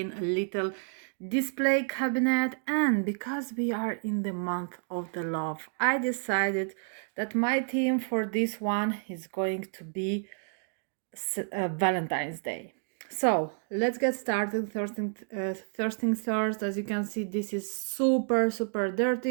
a little display cabinet, and because we are in the month of the love, I decided that my theme for this one is going to be Valentine's Day. So let's get started. First things first, as you can see, this is super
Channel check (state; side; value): silent; left; 58 dB below the other